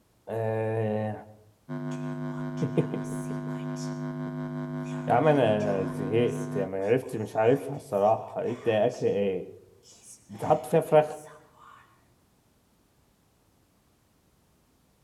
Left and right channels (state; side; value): identical; both; correlation 1.00